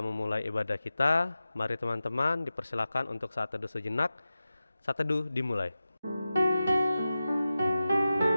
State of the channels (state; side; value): inverted; both; correlation -0.94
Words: memulai ibadah kita, mari teman-teman dipersilakan untuk saat teduh sejenak. Saat teduh dimulai.